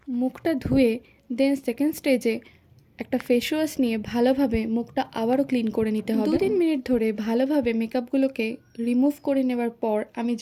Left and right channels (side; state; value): both; identical; correlation 1.00